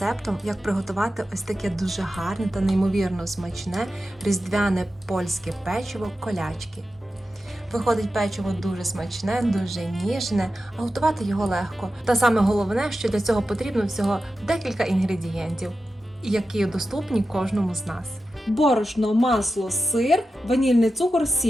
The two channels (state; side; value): normal; both; correlation 0.92